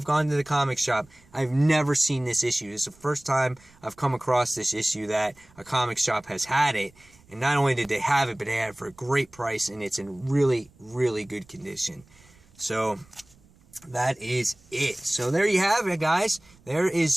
gone to the comic shop, I've never seen this issue. This is the first time I've come across this issue that a comic shop has had it. And not only did they have it, but they had it for a great price, and it's in really, really good condition. So that is it. So there you have it, guys. There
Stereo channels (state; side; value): noise; right; rumble, 28 dB below the sound